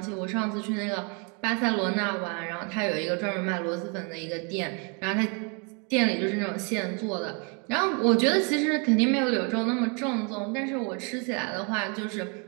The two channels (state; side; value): quieter; left; 35.0 dB